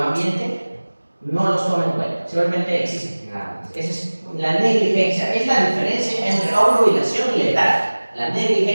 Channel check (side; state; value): both; inverted; correlation -1.00